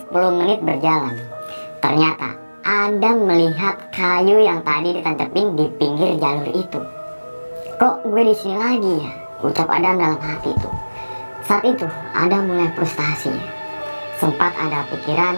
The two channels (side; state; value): both; inverted; correlation -1.00